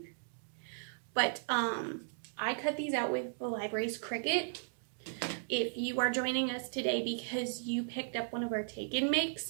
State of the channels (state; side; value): silent; left; digital silence